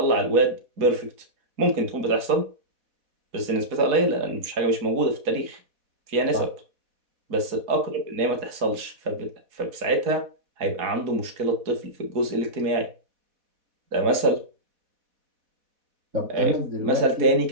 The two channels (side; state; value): left; late; 4.1 ms